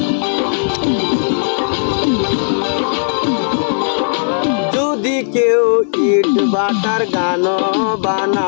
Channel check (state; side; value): silent; right; digital silence